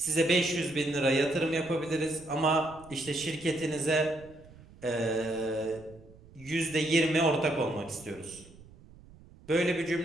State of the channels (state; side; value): noise; right; rumble, 22 dB below the sound